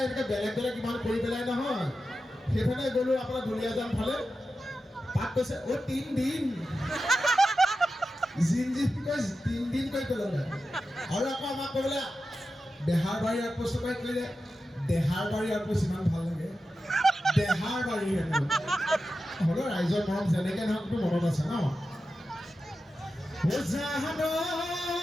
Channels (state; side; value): normal; both; correlation 0.92